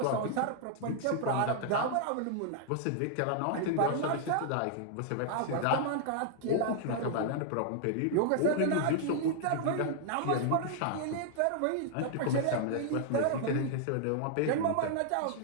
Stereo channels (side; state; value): both; different; correlation 0.00